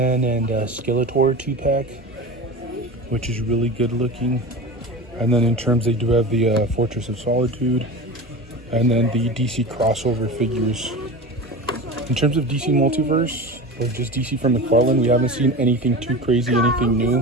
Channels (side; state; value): both; normal; correlation 0.30